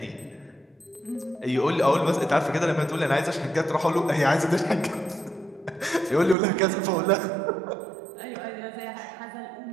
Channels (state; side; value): drops out; left; at 6.4 s